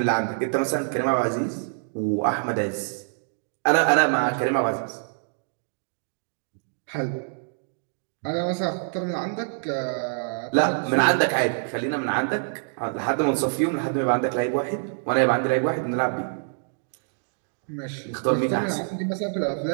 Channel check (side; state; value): left; silent; digital silence